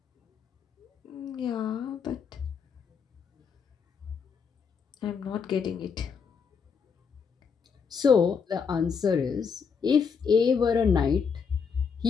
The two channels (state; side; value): quieter; right; 6.1 dB